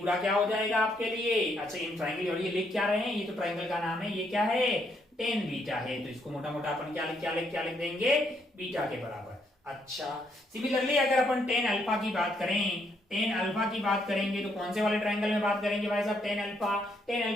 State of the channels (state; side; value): normal; both; correlation 0.74